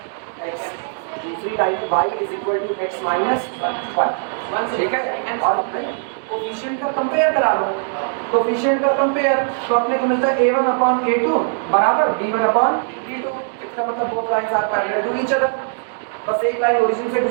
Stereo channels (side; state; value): left; silent; digital silence